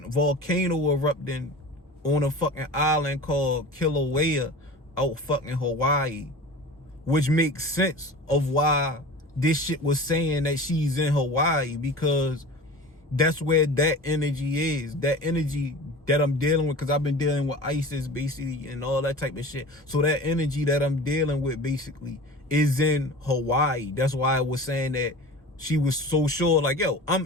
volcano erupting on a fucking island called Kilauea out fucking Hawaii, which makes sense of why this shit was saying that she's in Hawaii, because that's where that energy is. That energy that I'm dealing with, because I've been dealing with ISIS basically and all that type of shit. So that energy that I'm dealing with basically is in Hawaii. That's why I was saying that she was so sure, like, yo, I'm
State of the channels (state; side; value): normal; both; correlation 0.36